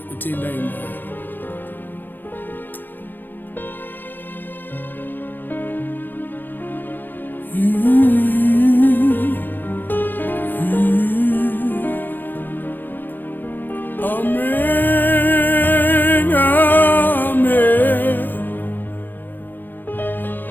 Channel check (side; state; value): right; late; 0.091 ms